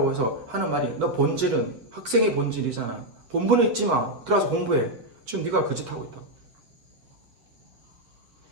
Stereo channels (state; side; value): late; left; 8.6 ms